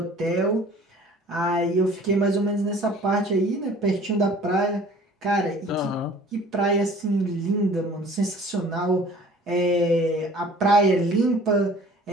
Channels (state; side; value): normal; both; correlation 0.49